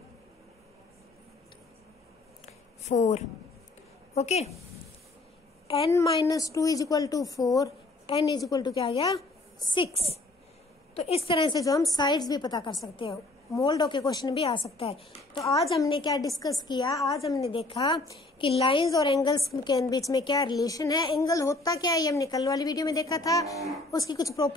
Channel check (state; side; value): quieter; right; 3.0 dB